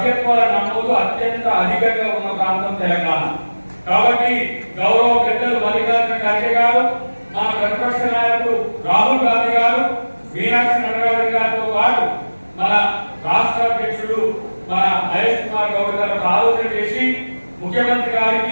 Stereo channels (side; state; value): both; inverted; correlation -1.00